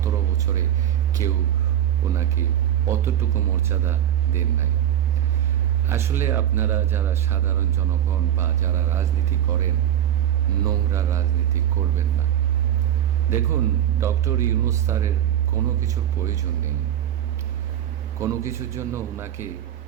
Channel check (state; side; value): quieter; left; 11.0 dB